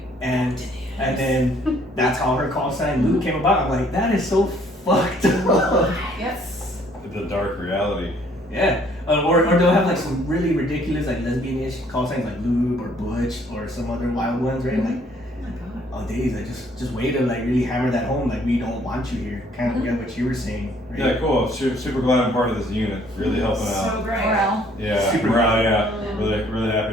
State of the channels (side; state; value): both; normal; correlation 0.62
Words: And then that's how her call sign Lou came about. I'm like, that is so fucked up. Yes. The dark reality. Yeah. Or they'll have like some really ridiculous like lesbian-ish call signs like lube or butch or some other wild ones, right? Like, Oh my god. oh days, like just way to like really hammer that home, like we don't want you here. Kind of what you were saying, right? Yeah, cool. Super glad I'm part of this unit. Really helping So out. great. Morale. Yeah, Super morale, yeah. Really